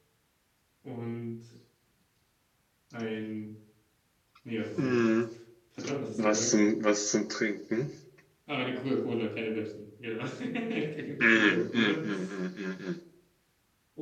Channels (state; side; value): identical; both; correlation 1.00